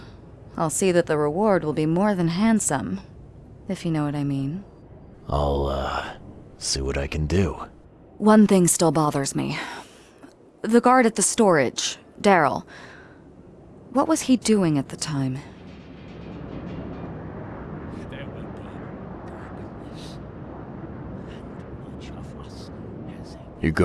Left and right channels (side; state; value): both; identical; correlation 1.00